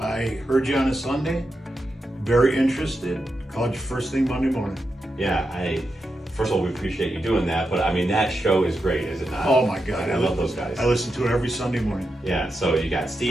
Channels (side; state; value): both; normal; correlation 0.87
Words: heard you on a Sunday, very interested, called you first thing Monday morning. Yeah, first of all, we appreciate you doing that, but I mean, that show is great, is it not? Oh my God. I love those guys. I listen to it every Sunday morning. Yeah, so you got